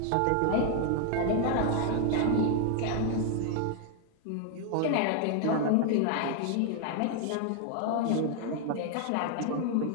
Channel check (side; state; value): both; different; correlation 0.00